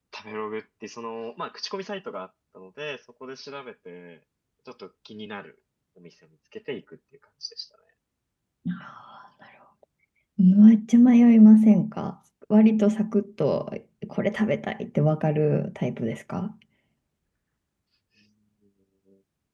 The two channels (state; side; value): identical; both; correlation 1.00